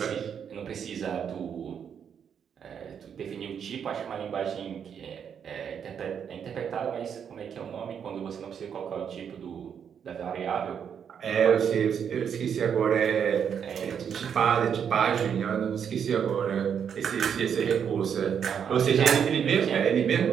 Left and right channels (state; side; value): quieter; left; 7.8 dB